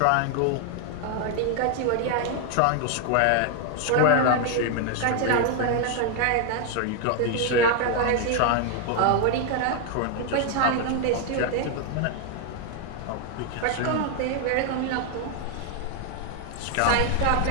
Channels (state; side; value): different; both; correlation 0.00